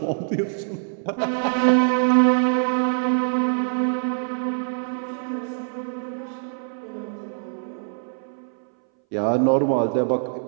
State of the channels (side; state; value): left; silent; 61 dB below the other